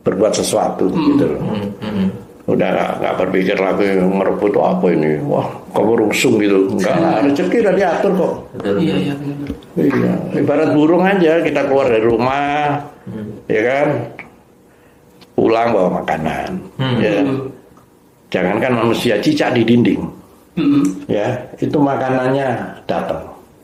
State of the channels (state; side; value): identical; both; correlation 1.00